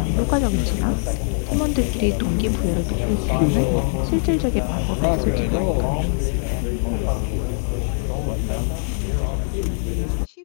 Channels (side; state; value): right; silent; digital silence